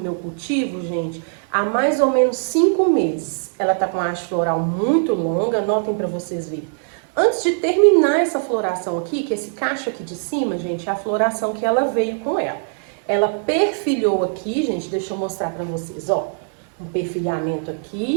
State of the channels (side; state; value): left; silent; digital silence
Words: cultivo, gente, há mais ou menos 5 meses. Ela tá com a haste floral muito longa, notem para vocês verem. Antes de terminar essa floração aqui, que esse cacho aqui de cima, gente, é a floração que ela veio com ela. Ela perfilhou aqui, gente, deixa eu mostrar pra vocês, ó. Um perfilhamento